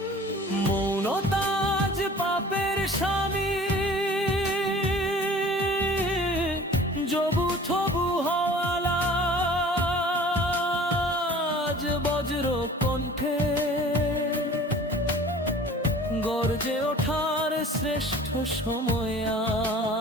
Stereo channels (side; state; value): both; normal; correlation 0.46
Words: মৌনতা আজ পাপের স্বামী, জবু থবু হওয়ালা আজ বজ্র কণ্ঠে গর্জে ওঠার শ্রেষ্ঠ সময় আজ।